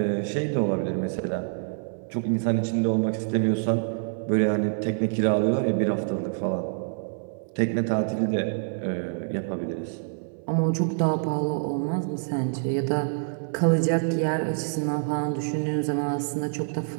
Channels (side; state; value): left; silent; 59 dB below the other